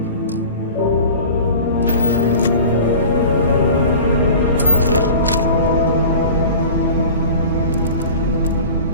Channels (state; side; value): inverted; both; correlation -0.39